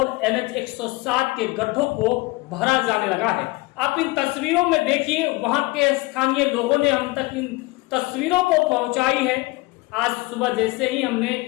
NH 107 के गड्ढों को भरा जाने लगा है। आप इन तस्वीरों में देखिए, वहां के स्थानीय लोगों ने हम तक इन तस्वीरों को पहुंचाई है। आज सुबह जैसे ही हमने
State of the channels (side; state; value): right; quieter; 22.3 dB